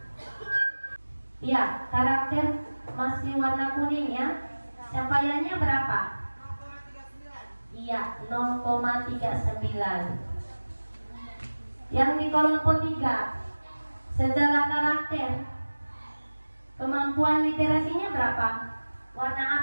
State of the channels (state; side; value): inverted; both; correlation -1.00